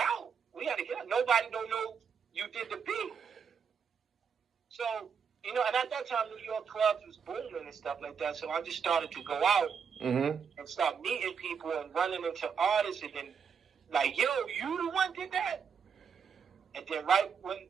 We got to get out. Nobody don't know you did the beat. So, and at that time, New York clubs was booming and stuff like that. So I just started to go out and start meeting people and running into artists and then like, yo, you the one did that? And then right when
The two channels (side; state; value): left; quieter; 6.7 dB